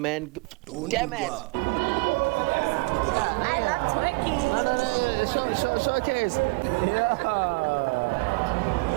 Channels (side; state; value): left; quieter; 27.2 dB